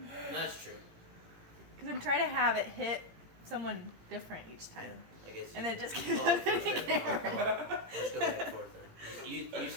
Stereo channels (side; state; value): left; late; 18 ms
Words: That's true. Because I'm trying to have it hit someone different each Yeah, time. I guess. And then it just you keeps call it first step and I'll happening. call it. Let's go back and forth then. You